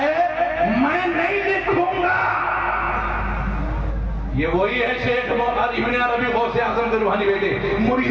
میں نہیں لکھوں گا۔ یہ وہی ہے شیخ ابن عربی غوث اعظم کے روحانی بیٹے۔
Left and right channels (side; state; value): both; identical; correlation 1.00